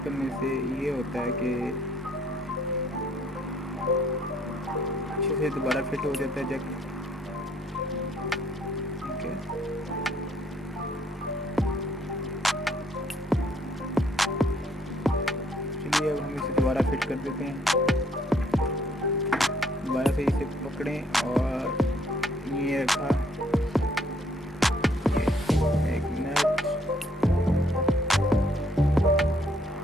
करने से ये होता है कि अच्छे से दोबारा फिट हो जाता है जैक। ठीक है, चलिए अब हम इसे दोबारा फिट कर देते हैं। दोबारा से इसे पकड़ें और ये रखा एक मिनट।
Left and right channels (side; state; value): both; normal; correlation 0.66